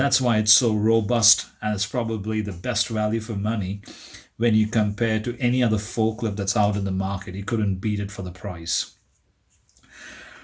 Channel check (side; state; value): both; identical; correlation 1.00